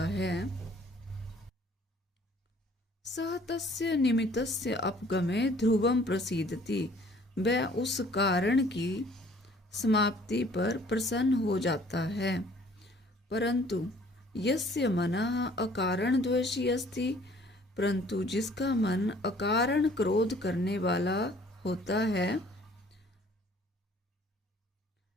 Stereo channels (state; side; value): normal; both; correlation 0.56